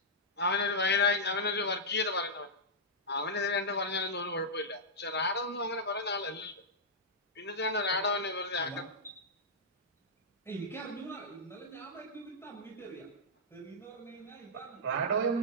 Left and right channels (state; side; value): normal; both; correlation -0.10